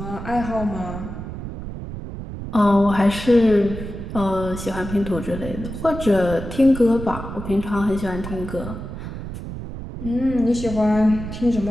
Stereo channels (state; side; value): noise; right; rumble, 9 dB below the sound